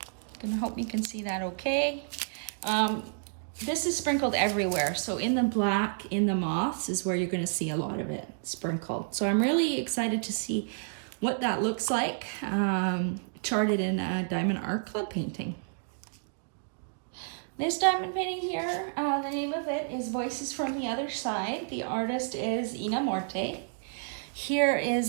Gonna hope you can see that okay. This is sprinkled everywhere. So in the black, in the moths is where you're gonna see a lot of it sprinkled. So I'm really excited to see what that looks like charted in a Diamond Art Club painting. This diamond painting here, the name of it is Voices from the Other Side. The artist is Ina Morte. Here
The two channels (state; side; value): silent; left; digital silence